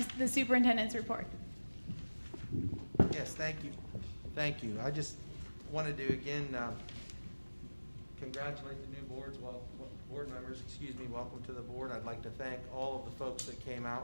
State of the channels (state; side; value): inverted; both; correlation -1.00